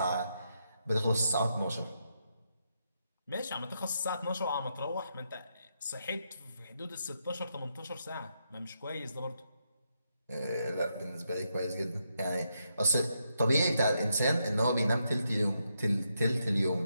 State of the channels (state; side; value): inverted; both; correlation -0.81